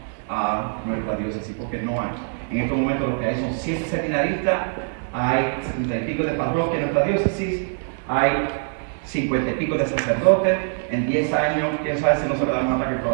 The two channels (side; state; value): left; silent; digital silence